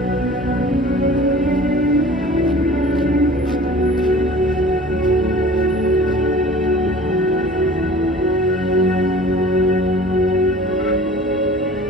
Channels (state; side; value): normal; both; correlation 0.45